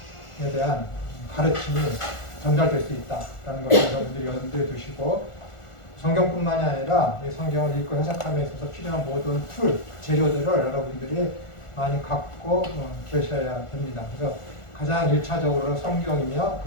대한 가르침이 전달될 수 있다라는 것을 여러분들이 염두에 두시고, 성경뿐만이 아니라 이 성경을 읽고 해석함에 있어서 필요한 모든 재료들을 여러분들이 많이 갖고 계셔야 됩니다. 그래서 가장 1차적으로 성경이며,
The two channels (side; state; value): right; late; 1.4 ms